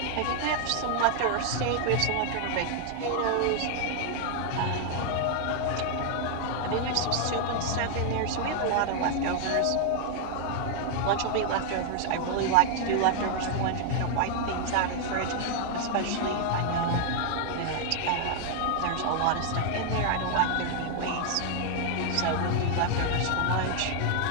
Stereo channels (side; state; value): both; different; correlation 0.00